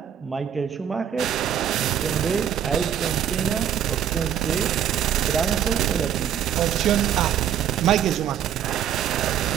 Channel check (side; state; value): left; quieter; 9.5 dB